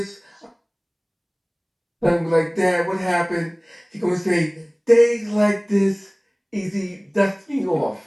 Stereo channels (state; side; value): identical; both; correlation 1.00